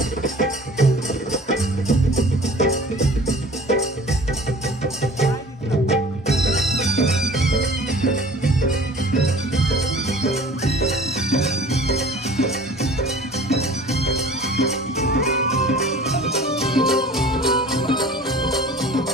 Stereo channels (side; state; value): both; normal; correlation 0.46